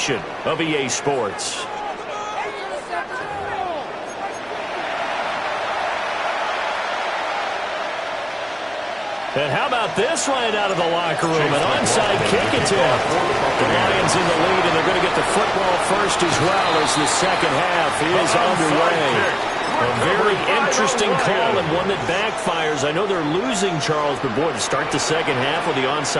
of EA Sports. And how about this right out of the locker room? An onside kick attempt. The Lions in the lead, and they're going to get the football first as well as the second half is underway. A very interesting call and one that backfires. I know they're losing, Charles, but boy, to start the second half with the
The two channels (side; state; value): both; identical; correlation 1.00